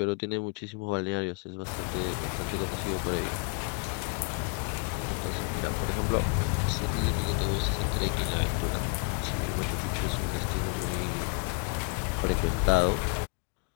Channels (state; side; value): quieter; right; 33.2 dB